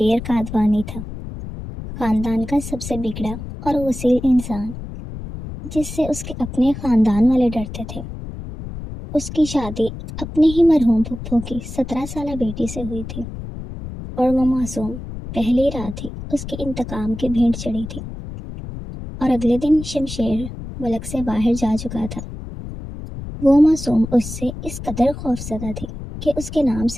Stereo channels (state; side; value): noise; left; rumble, 10 dB below the sound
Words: قادوانی تھا، خاندان کا سب سے بگڑا اور غسیل انسان، جس سے اس کے اپنے خاندان والے ڈرتے تھے۔ اس کی شادی اپنے ہی مرحوم پھپھو کی 17 سالہ بیٹی سے ہوئی تھی، اور وہ معصوم پہلی رات ہی اس کے انتقام کی بھینٹ چڑھی تھی، اور اگلے دن شمشیر ملک سے باہر جا چکا تھا۔ وہ معصوم اس سے اس قدر خوفزدہ تھی کہ اس کے نام